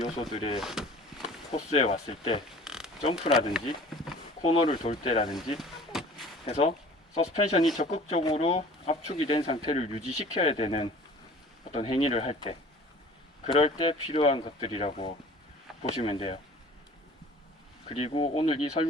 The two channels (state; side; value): normal; both; correlation 0.46